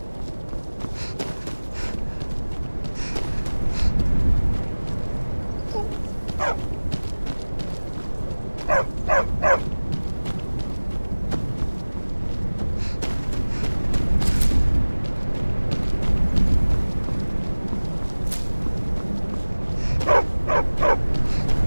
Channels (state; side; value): inverted; both; correlation -1.00